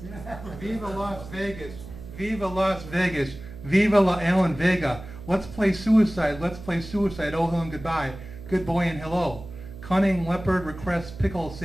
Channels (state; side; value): noise; right; hum, 14 dB below the sound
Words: Viva Las Vegas. Viva Las Vegas. Viva La Alan Vega. Let's play suicide. Let's play suicide. Oh, hello and goodbye. Good boy and hello. Cunning leopard requests pickle